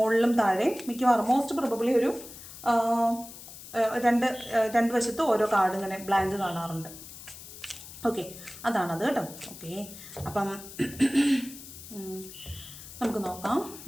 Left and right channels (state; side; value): noise; left; hiss, 15 dB below the sound